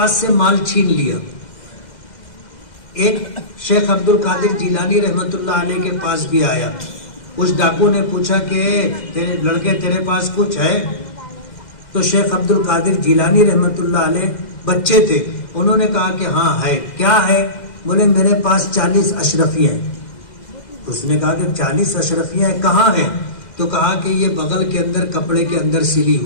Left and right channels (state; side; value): late; right; 2.0 ms